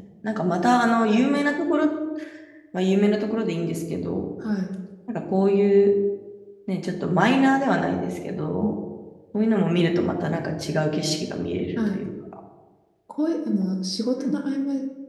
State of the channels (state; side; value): identical; both; correlation 1.00